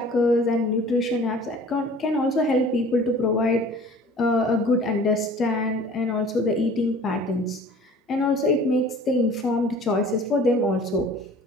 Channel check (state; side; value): normal; both; correlation 0.47